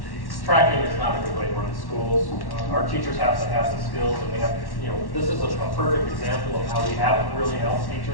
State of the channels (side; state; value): right; late; 1.1 ms